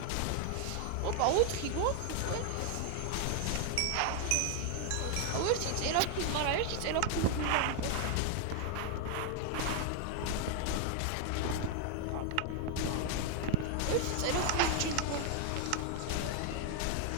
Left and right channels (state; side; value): different; both; correlation 0.00